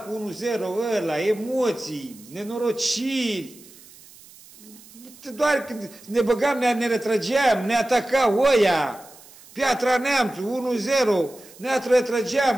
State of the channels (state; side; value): noise; right; hiss, 22 dB below the sound